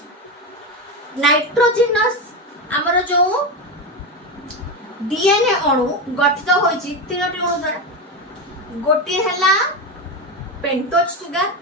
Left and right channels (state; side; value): normal; both; correlation 0.15